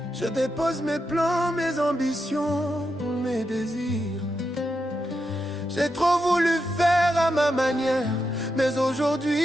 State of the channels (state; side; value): normal; both; correlation 0.85